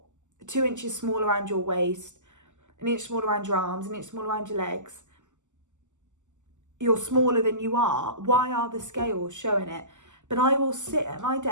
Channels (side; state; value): left; late; 0.85 ms